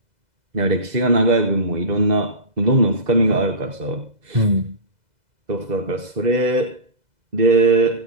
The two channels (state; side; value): late; left; 2.0 ms